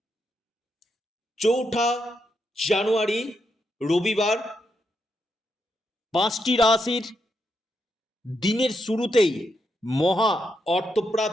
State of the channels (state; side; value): normal; both; correlation 0.82